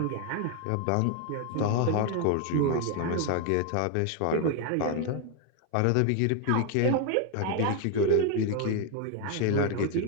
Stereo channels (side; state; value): both; different; correlation 0.01